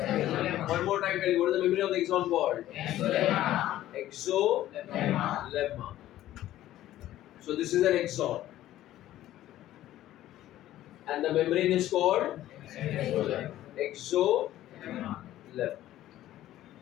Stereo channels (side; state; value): right; quieter; 13.8 dB